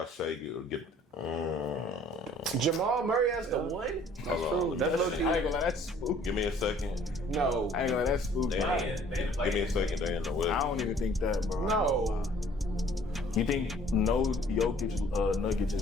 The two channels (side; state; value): both; normal; correlation 0.56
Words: Shai get. Jamal Murray has the one? That's true. That's low key. I ain't gonna lie, that's spooky. Give me a second. No. I ain't gonna lie, that's spooky. Give me a second. They in the West. I don't even think that, bro. No. You think no Jokic Nuggets